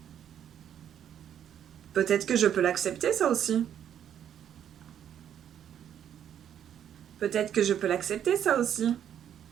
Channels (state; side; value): quieter; left; 9.6 dB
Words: Peut-être que je peux l'accepter, ça aussi. Peut-être que je peux l'accepter, ça aussi.